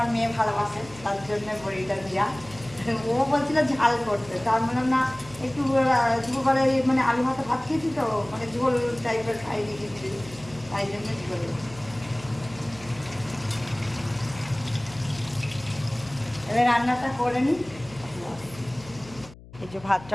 মেয়ে ভালোবাসে, তার জন্য বড়িটা দেওয়া। ও বলছিল ঝাল করতে, তার বললাম না একটু দুপুরবেলা মানে আলু ভাতে ভাত খেয়েছি তো, মানে ঝোল টাইপের খাই দিয়েছি, তাই জন্য ঝোল। এবার রান্নাটা করে নিই। এই যে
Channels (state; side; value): noise; left; hum, 19 dB below the sound